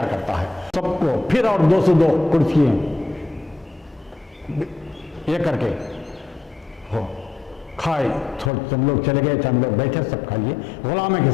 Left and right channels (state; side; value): drops out; right; at 8.5 s